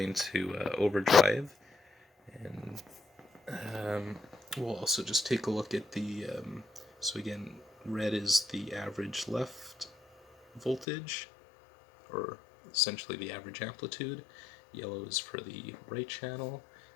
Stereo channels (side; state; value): right; drops out; at 10.9 s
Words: into overdrive. And we'll also just take a look at the, so again, red is the average left voltage, or essentially the average amplitude. Yellow is for the right channel,